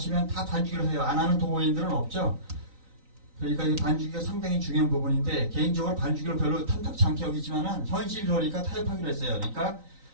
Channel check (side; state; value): left; late; 3.9 ms